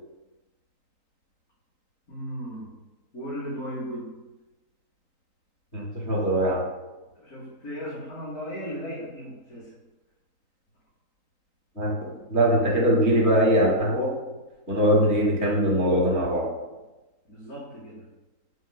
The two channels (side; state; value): right; late; 3.9 ms